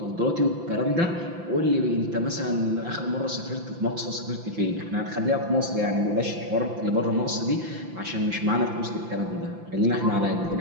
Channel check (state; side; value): late; left; 5.9 ms